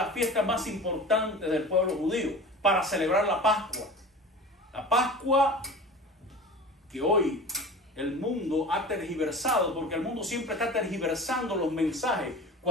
fiestas más importantes del pueblo judío, para celebrar la Pascua. La Pascua que hoy el mundo ha tergiversado, porque el mundo siempre está tergiversando los mensajes.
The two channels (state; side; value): normal; both; correlation 0.36